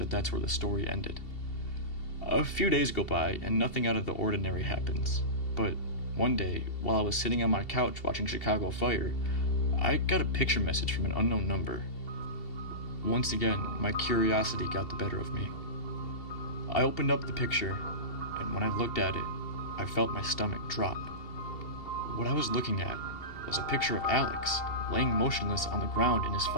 that's where the story ended. A few days go by, and nothing out of the ordinary happens. But one day, while I was sitting on my couch watching Chicago Fire, I got a picture message from an unknown number. Once again, my curiosity got the better of me. I opened up the picture, and when I looked at it, I felt my stomach drop. What I was looking at was a picture of Alex, laying motionless on the ground in his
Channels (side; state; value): right; late; 2.7 ms